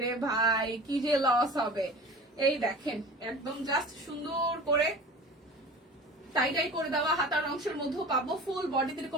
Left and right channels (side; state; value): both; normal; correlation 0.39